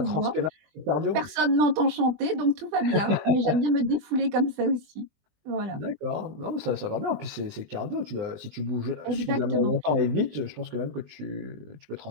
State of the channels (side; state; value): left; late; 20 ms